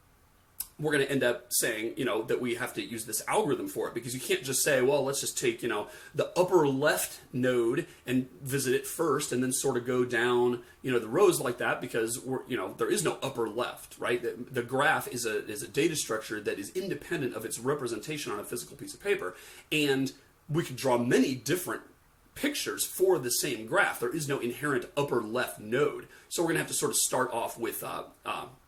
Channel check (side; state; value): both; identical; correlation 1.00